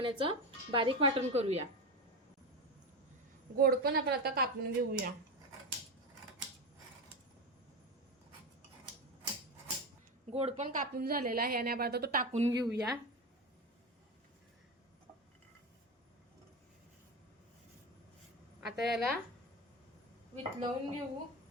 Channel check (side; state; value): both; normal; correlation 0.19